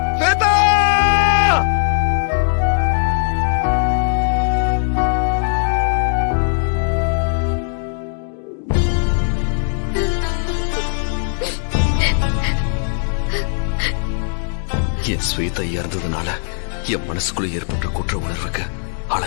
ஸ்வேதா! என் ஸ்வேதா இறந்ததுனால என் மனசுக்குள்ள ஏற்பட்ட குற்ற உணர்வுக்கு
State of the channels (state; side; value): silent; right; digital silence